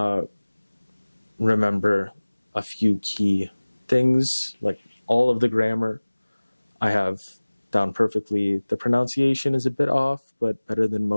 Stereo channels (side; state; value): both; inverted; correlation -1.00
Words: remember a few key things, like all of the grammar I have down perfectly. The pronunciation is a bit off, but better than